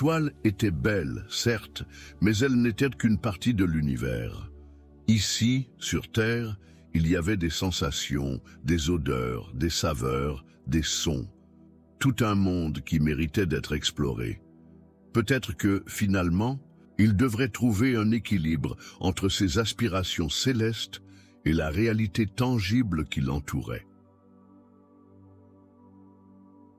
étaient belles, certes, mais elles n'étaient qu'une partie de l'univers. Ici, sur Terre, il y avait des sensations, des odeurs, des saveurs, des sons. Tout un monde qui méritait d'être exploré. Peut-être que, finalement, il devrait trouver un équilibre entre ses aspirations célestes et la réalité tangible qui l'entourait.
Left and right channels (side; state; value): both; identical; correlation 1.00